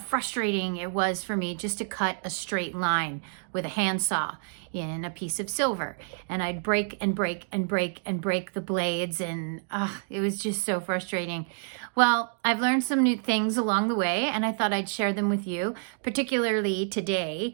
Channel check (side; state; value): left; silent; digital silence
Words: it was for me just to cut a straight line with a handsaw in a piece of silver. And I'd break and break and break and break the blades and it was just so frustrating. Well, I've learned some new things along the way and I thought I'd share them with you, particularly